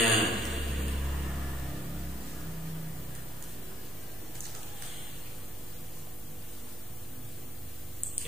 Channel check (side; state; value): both; normal; correlation 0.59